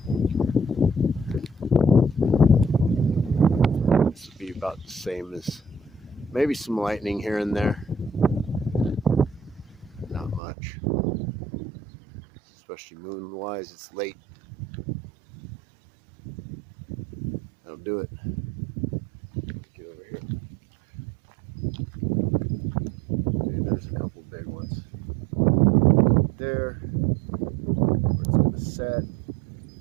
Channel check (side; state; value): left; drops out; at 10.4 s